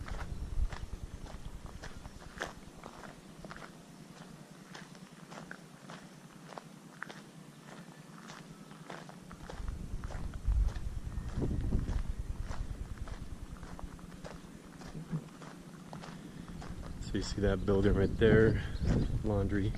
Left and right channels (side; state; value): both; identical; correlation 1.00